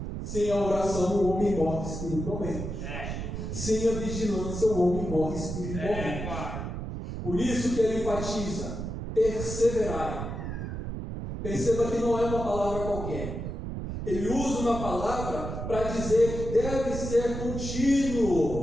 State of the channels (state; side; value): noise; right; rumble, 5 dB below the sound